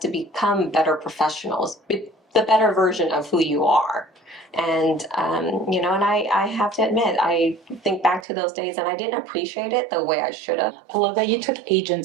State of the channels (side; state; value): left; drops out; at 8.2 s